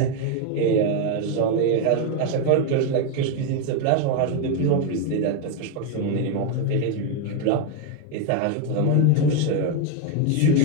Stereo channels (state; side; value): different; both; correlation 0.01